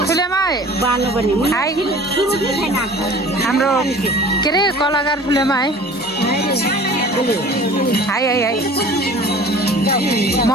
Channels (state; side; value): normal; both; correlation 0.45